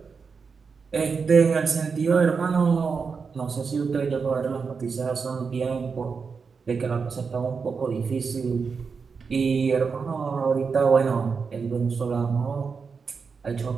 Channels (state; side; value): quieter; left; 5.4 dB